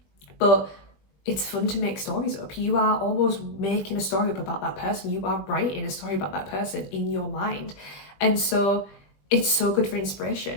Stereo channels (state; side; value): late; right; 20 ms